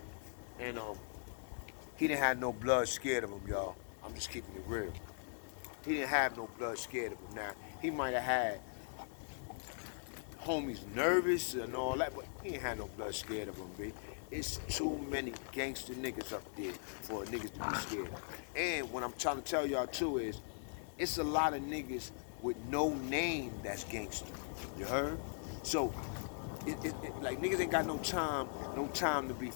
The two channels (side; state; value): right; silent; digital silence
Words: And he didn't have no blood scared of him, y'all. I'm just keeping it real. He didn't have no blood scared of him. Now, he might have had homies nervous and all that, but he ain't had no blood scared of him, B. It's too many gangster niggas up there for niggas to be scared. And what I'm trying to tell y'all too is, it's a lot of niggas with no name that's gangster. You heard? So, like niggas ain't got no time to be